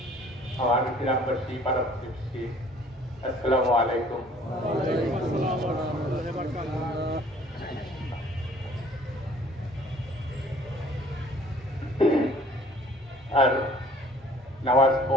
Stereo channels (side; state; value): both; normal; correlation 0.54